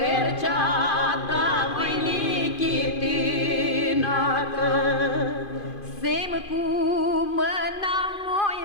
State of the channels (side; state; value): right; late; 2.5 ms